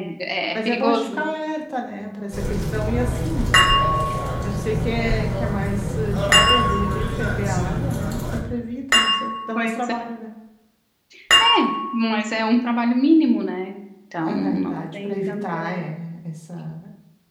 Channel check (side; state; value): both; identical; correlation 1.00